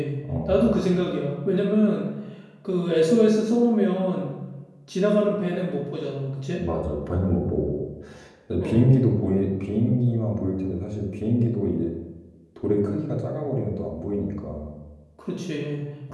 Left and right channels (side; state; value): both; identical; correlation 1.00